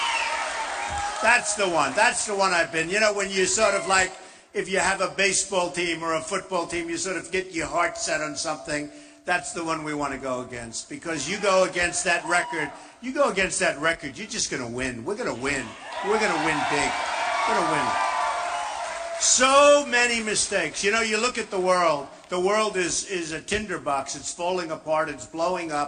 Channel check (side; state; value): both; identical; correlation 1.00